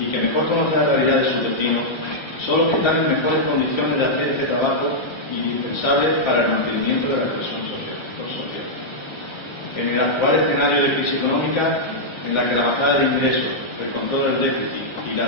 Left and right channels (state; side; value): late; right; 1.3 ms